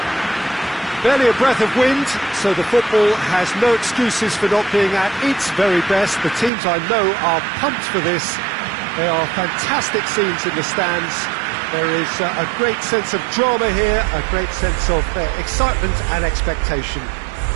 Barely a breath of wind, so the football has no excuses for not being at its very best. The teams I know are pumped for this. There are fantastic scenes in the stands. There is a great sense of drama here, a great sense of excitement and expectation.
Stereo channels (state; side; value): drops out; left; at 6.5 s